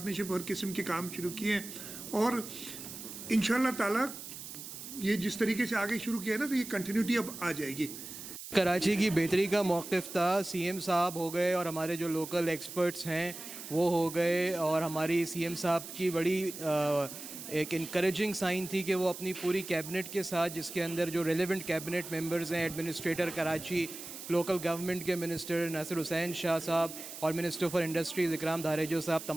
हर किस्म के काम शुरू किए हैं, और इंशाल्लाह ताला ये जिस तरीके से आगे शुरू किया है ना, तो ये कंटिन्यूटी अब आ जाएगी। कराची की बेहतरी का मौक़िफ़ था, सीएम साहब हो गए और हमारे जो लोकल एक्सपर्ट्स हैं वो हो गए, और हमारी सीएम साहब की बड़ी ایک انکریجنگ سائن تھی کہ وہ اپنی پوری کیبنٹ کے ساتھ، جس کے اندر جو ریلیونٹ کیبنٹ ممبرز ہیں، ایڈمنسٹریٹر کراچی، لوکل گورنمنٹ کے منسٹر ناصر حسین شاہ صاحب اور منسٹر فار انڈسٹریز اکرام دھاریجو صاحب،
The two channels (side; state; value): right; noise; hiss, 11 dB below the sound